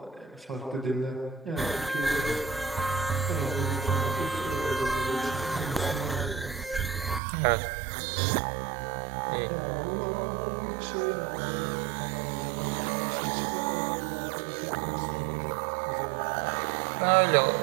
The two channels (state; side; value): drops out; left; at 7.2 s